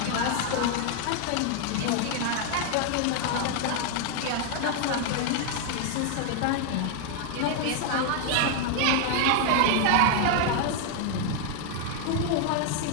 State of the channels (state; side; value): different; both; correlation 0.00